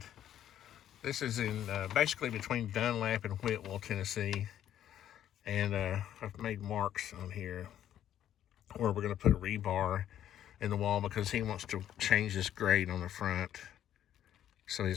This is in basically between Dunlap and Whitwell, Tennessee, and I've made marks on here where we're going to put a rebar in the wall because he wants to change this grade on the front so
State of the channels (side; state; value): right; quieter; 11.0 dB